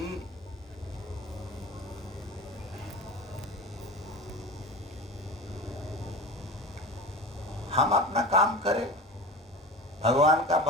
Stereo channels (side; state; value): both; normal; correlation 0.32